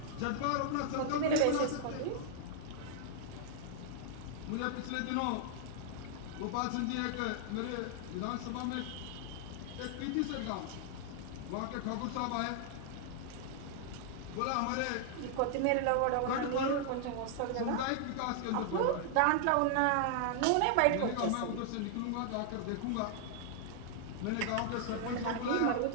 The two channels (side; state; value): both; different; correlation 0.00